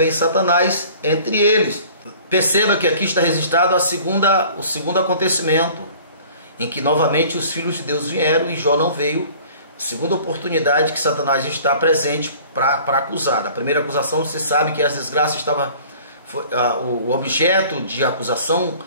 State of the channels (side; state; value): both; inverted; correlation -0.48